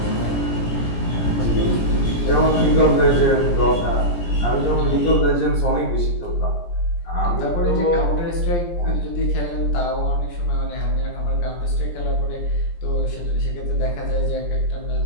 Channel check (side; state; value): right; late; 17 ms